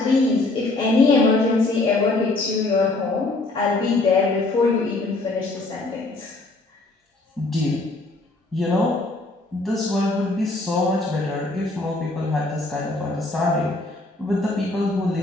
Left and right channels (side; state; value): right; quieter; 3.0 dB